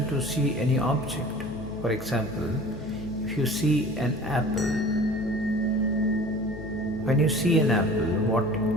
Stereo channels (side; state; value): left; noise; hum, 13 dB below the sound